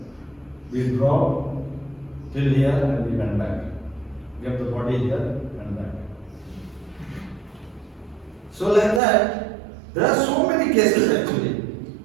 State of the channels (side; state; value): left; drops out; at 9.0 s